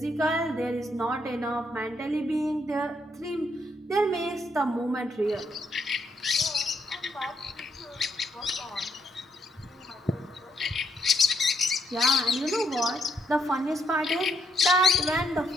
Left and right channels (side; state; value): both; normal; correlation 0.75